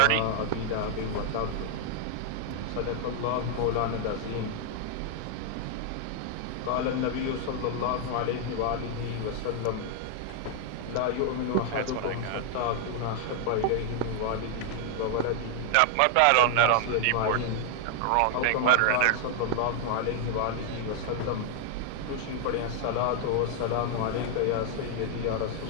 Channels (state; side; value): different; both; correlation 0.00